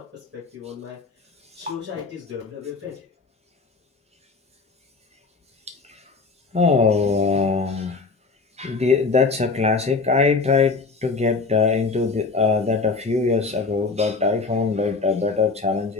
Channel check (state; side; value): quieter; right; 4.2 dB